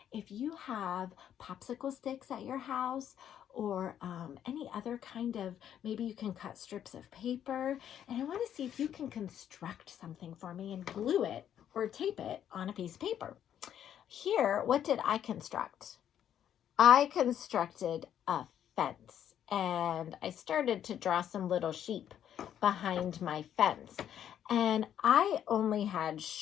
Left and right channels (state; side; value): quieter; right; 10.0 dB